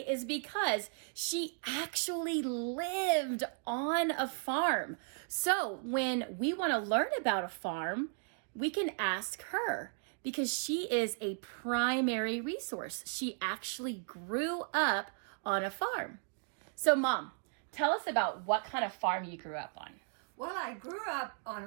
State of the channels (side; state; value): left; silent; 54 dB below the other